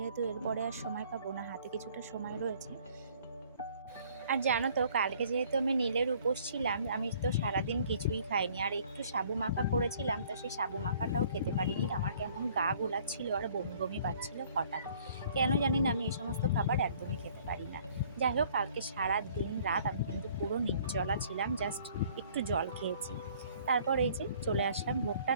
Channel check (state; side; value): inverted; both; correlation -0.57